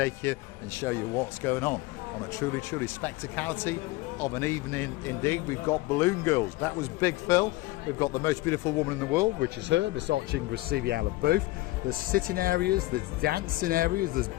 you and show you what's going on a truly spectacality of an evening indeed. We've got Balloon Girls. That was Big Phil. We've got the most beautiful woman in the world, which is her, Miss Booth. There's sitting areas, there's dancing areas, there's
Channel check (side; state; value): right; quieter; 19.2 dB